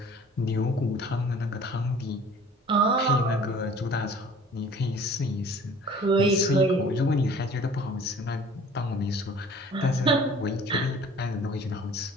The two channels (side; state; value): both; normal; correlation 0.49